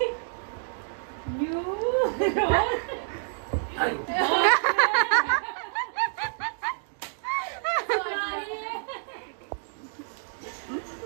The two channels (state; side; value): silent; left; digital silence